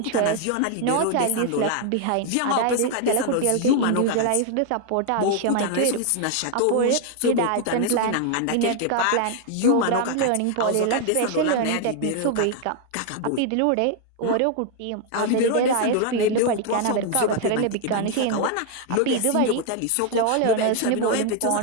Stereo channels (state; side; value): different; both; correlation 0.00